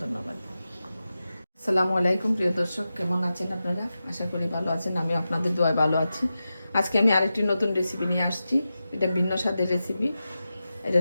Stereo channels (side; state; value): both; inverted; correlation -0.92